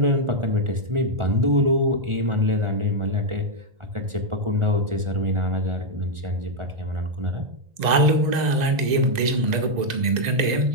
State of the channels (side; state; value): left; late; 2.0 ms